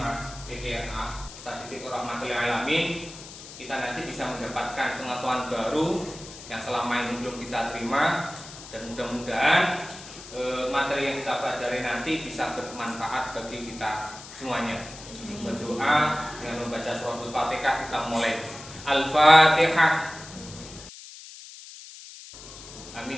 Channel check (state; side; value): noise; left; hiss, 15 dB below the sound